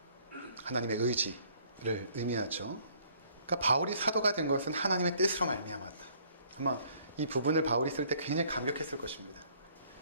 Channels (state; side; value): inverted; both; correlation -0.61